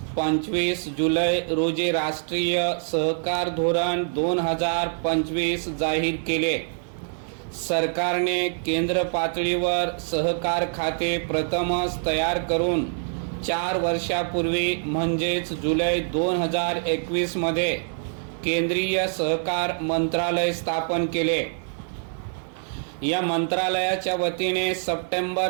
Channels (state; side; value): silent; left; digital silence